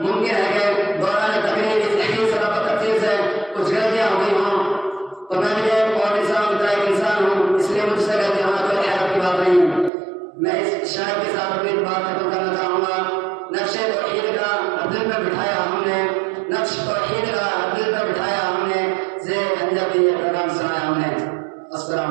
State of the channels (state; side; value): drops out; left; at 9.9 s